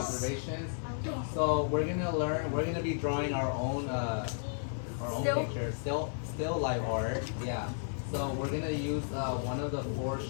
So we're gonna be drawing our own Still? picture, still live art. Yeah. So we're gonna use one of the 4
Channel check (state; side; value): silent; right; 56 dB below the other